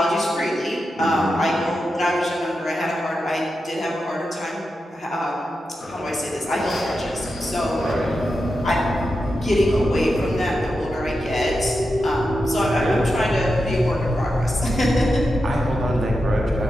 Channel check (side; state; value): both; normal; correlation 0.89